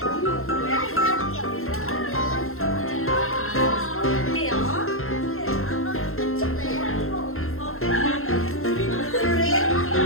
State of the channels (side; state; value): right; late; 0.62 ms